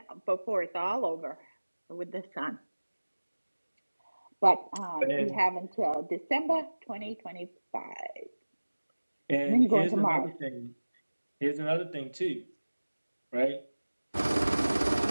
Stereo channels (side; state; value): both; inverted; correlation -1.00